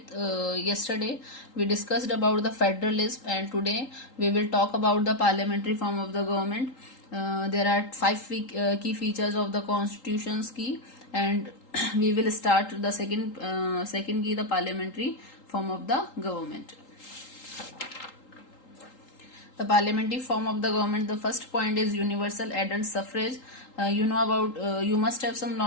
Yesterday we discussed about the federalism and today we will talk about the parliamentary form of the government. There are five key features of the constitution's key, and we will start the second key, the parliamentary form of the government. The parliamentary form of the government, the first point is universal adult suffrage. You must have some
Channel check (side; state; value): right; late; 3.8 ms